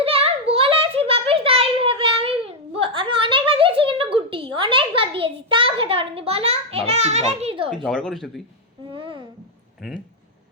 আমি বলেছি বাপিস তাই ভেবে আমি অনেকবার দিয়েছি, কিন্তু গুটি অনেকবার দিয়েছি, তাও খেতে পারিনি। বলো এটা বাবা, আমার কি দোষ? তুই ঝগড়া করিস না তুই? হুম। হুম,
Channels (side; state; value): both; normal; correlation 0.00